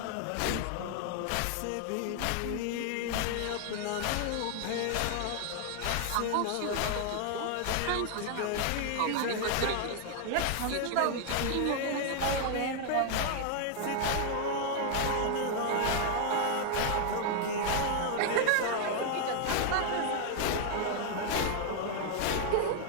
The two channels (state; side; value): different; both; correlation 0.00